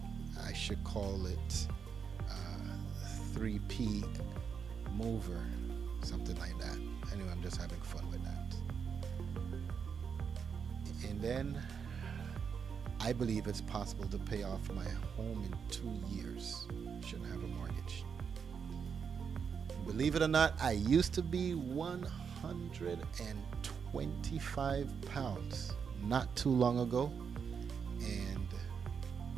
I should call it 3P Mover, something like that. Anyway, I'm just having fun with that. And then I believe it's possible to pay off my home in 2 years. Shouldn't have a mortgage. Believe it or not, I used to be 125 pounds not too long ago, and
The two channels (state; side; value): quieter; left; 6.5 dB